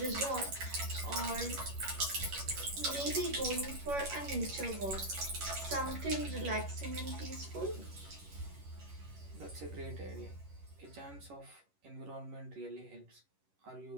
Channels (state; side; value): late; left; 11 ms